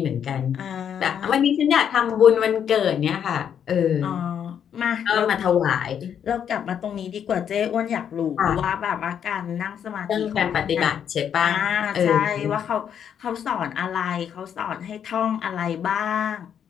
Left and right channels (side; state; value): right; quieter; 8.6 dB